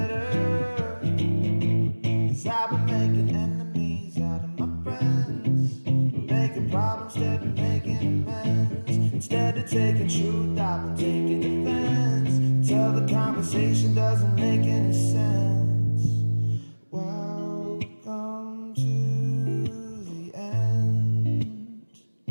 'cause I've been making enemies out of my friends, making problems instead of making amends. Instead of taking truth, I've been taking offense until the conversation doesn't make any sense. Welcome to the end.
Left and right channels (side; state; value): both; inverted; correlation -1.00